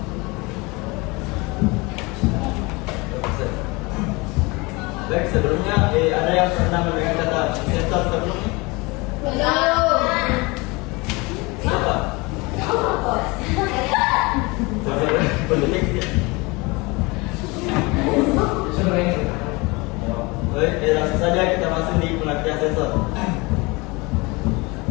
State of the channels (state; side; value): quieter; right; 25.5 dB